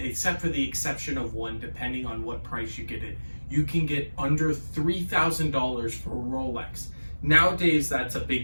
for the exception of one, depending on what price you get it, you can get under $3,000 for Rolex. Nowadays, that's a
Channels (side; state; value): both; inverted; correlation -1.00